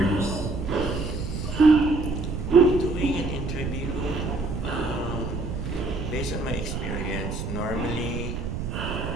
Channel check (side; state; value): right; noise; rumble, 4 dB below the sound